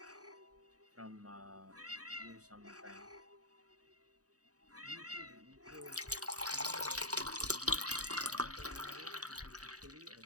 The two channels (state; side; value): late; left; 0.67 ms